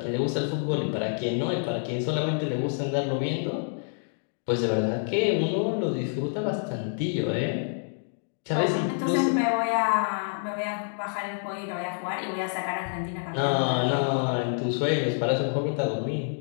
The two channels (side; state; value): right; silent; digital silence